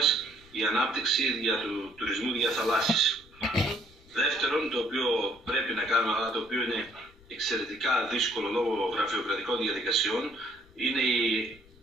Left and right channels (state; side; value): noise; left; rumble, 26 dB below the sound